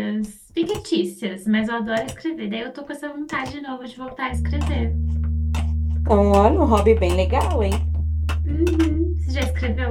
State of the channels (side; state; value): both; identical; correlation 1.00